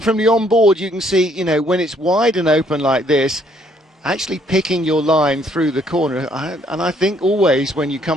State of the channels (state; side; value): normal; both; correlation 0.66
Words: from the onboard, you can see, you know, when it's wide and open like this, actually picking your line through the corner. And I think always when you